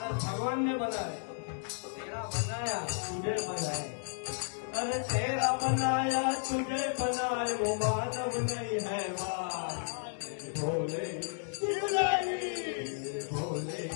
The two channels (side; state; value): right; silent; digital silence